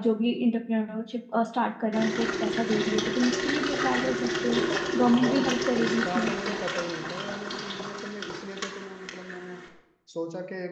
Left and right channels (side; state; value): both; identical; correlation 1.00